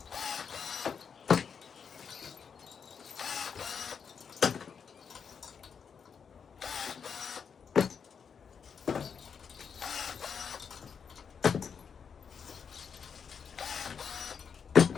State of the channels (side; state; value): right; quieter; 6.6 dB